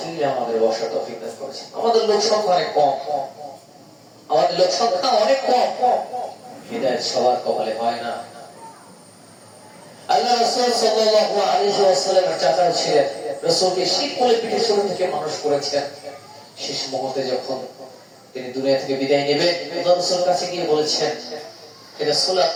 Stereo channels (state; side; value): identical; both; correlation 1.00